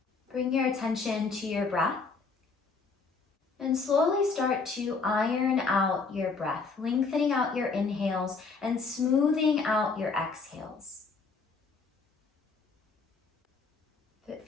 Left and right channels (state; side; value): quieter; right; 4.5 dB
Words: Bring your attention to your breath. And slowly start to iron out your breath, lengthening out your inhales and smoothing out your exhales. If it